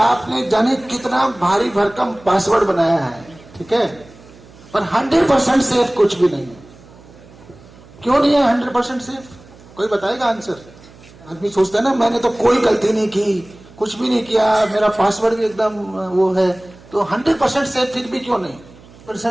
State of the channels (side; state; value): right; noise; hum, 23 dB below the sound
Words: जाने कितना भारी भरकम पासवर्ड बनाया है, ठीक है, पर 100% सेफ कुछ भी नहीं है। क्यों नहीं है 100% सेफ? कोई बताएगा आंसर? आदमी सोचता है ना, मैंने तो कोई गलती नहीं की, कुछ भी नहीं किया, मेरा पासवर्ड भी एकदम वो है, तो 100% सेफ फिर भी क्यों नहीं?